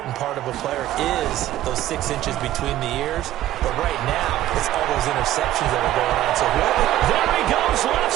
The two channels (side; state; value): left; quieter; 13.9 dB